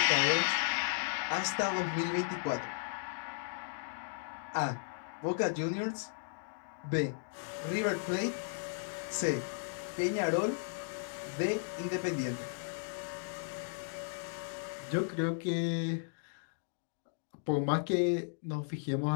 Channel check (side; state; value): right; silent; digital silence